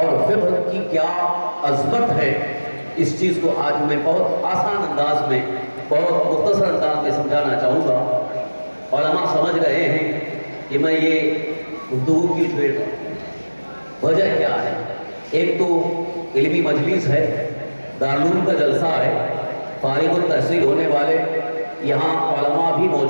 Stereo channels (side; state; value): both; inverted; correlation -1.00